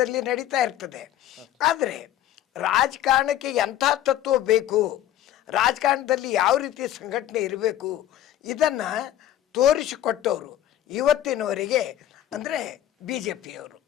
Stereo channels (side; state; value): right; quieter; 12.2 dB